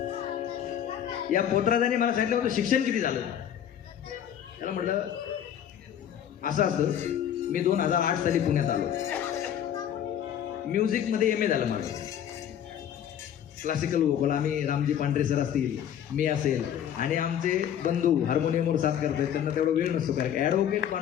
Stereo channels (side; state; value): right; quieter; 9.8 dB